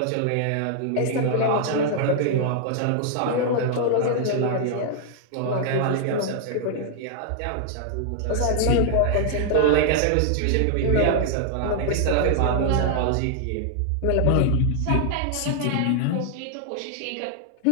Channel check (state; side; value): different; both; correlation 0.00